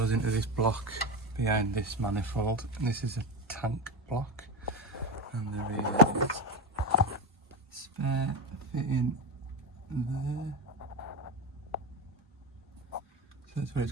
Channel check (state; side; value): normal; both; correlation 0.18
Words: into this block behind this manifold. And this is a tank block. And there is spare fitting there. So that's where it's